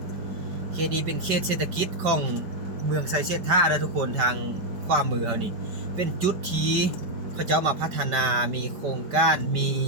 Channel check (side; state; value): left; late; 4.9 ms